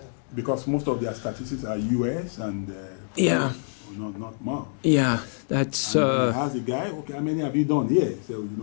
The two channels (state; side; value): silent; right; digital silence